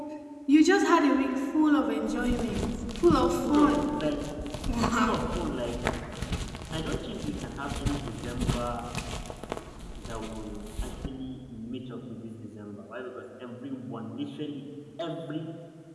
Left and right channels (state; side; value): identical; both; correlation 1.00